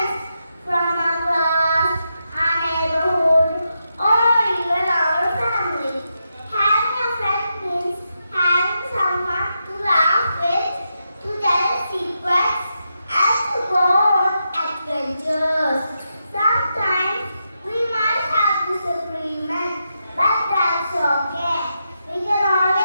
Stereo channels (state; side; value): inverted; both; correlation -0.85